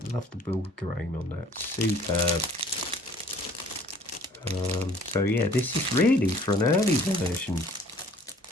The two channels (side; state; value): both; normal; correlation 0.54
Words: Love the wood grain on that. Superb. So yeah, this is really for an early version.